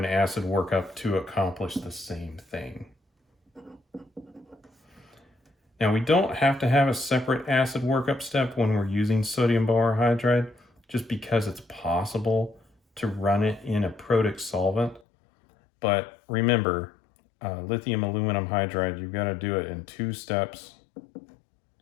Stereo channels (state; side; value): drops out; right; at 15.0 s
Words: acid workup to accomplish the same thing. Now, we don't have to have a separate acid workup step when we're using sodium borohydride, just because it's possible to run it in a protic solvent. But remember, lithium aluminum hydride, you've got to do it in 2 steps